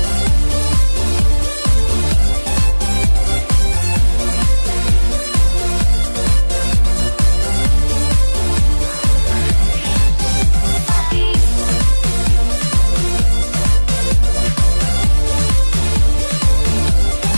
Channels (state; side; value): inverted; both; correlation -1.00